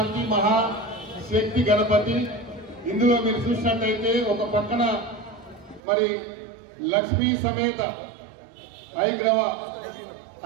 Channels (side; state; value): left; drops out; at 5.8 s